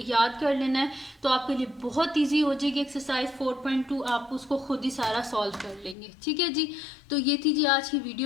याद कर लेना है, तो आपके लिए बहुत इजी हो जाएगी एक्सरसाइज 4.2, आप उसको खुद ही सारा सॉल्व कर लेंगे। ठीक है जी, तो ये थी जी आज की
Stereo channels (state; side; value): drops out; right; at 6.0 s